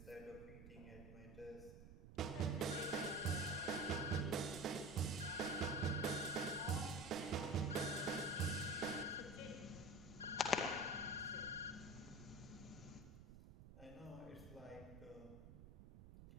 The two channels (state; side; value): noise; right; rumble, 15 dB below the sound